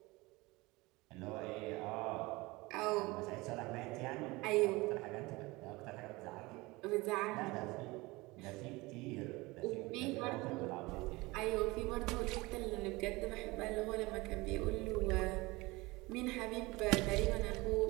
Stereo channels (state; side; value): quieter; left; 22.5 dB